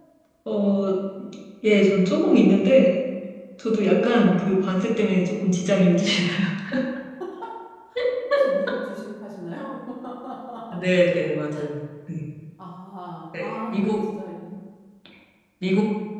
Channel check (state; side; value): identical; both; correlation 1.00